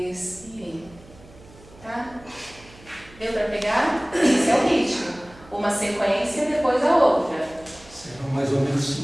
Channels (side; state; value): right; noise; hum, 23 dB below the sound